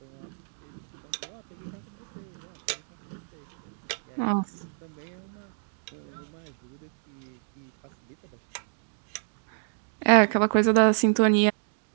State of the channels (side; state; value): left; silent; digital silence